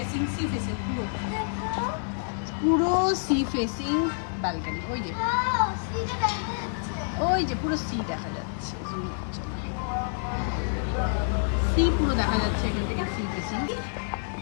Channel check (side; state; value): right; silent; 60 dB below the other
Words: পুরো সি ফেসিং ব্যালকনি। ওই যে পুরো সি দেখা যাচ্ছে, সি পুরো দেখা যাচ্ছে এখান থেকে, সি ফেসিং।